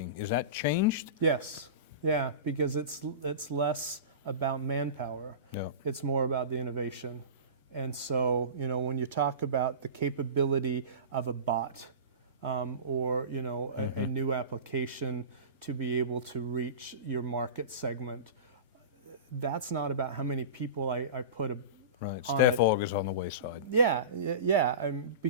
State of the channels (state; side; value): inverted; both; correlation -0.30